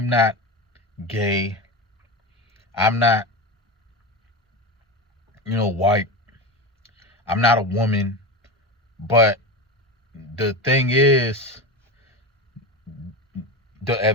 gay. I'm not, white. I'm not a woman. But the thing is, the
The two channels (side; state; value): both; normal; correlation 0.23